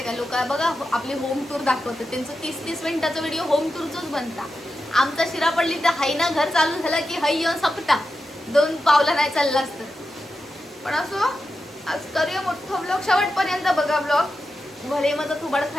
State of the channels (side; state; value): both; normal; correlation 0.90